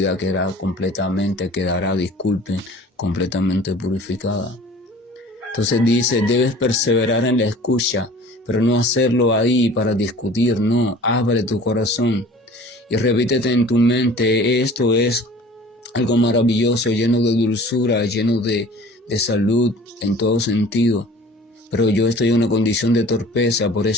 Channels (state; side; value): normal; both; correlation 0.46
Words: quedará completamente purificada. Entonces dice, debes perseverar en la escucha, pero no hacerlo ahí para discutir, no, abre tu corazón y repítete en tu mente, esto es algo maravilloso, lleno de dulzura, lleno de salud en todo sentido. Pero yo estoy en una condición de torpeza, por